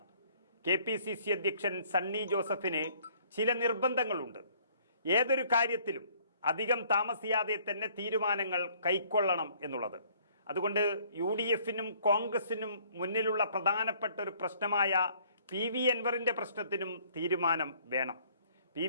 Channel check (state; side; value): inverted; both; correlation -0.60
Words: KPCC അധ്യക്ഷൻ സണ്ണി ജോസഫിന് ചില നിർബന്ധങ്ങളുണ്ട്. ഏതൊരു കാര്യത്തിലും അധികം താമസിയാതെ തന്നെ തീരുമാനങ്ങൾ കൈക്കൊള്ളണം എന്നുള്ളത്. അതുകൊണ്ട് UDF-നും കോൺഗ്രസിനും മുന്നിലുള്ള പ്രധാനപ്പെട്ട ഒരു പ്രശ്നമായ PV അൻവറിന്റെ പ്രശ്നത്തിനും തീരുമാനം വേണം.